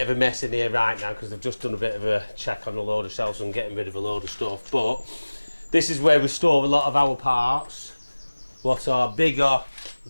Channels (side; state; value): both; inverted; correlation -1.00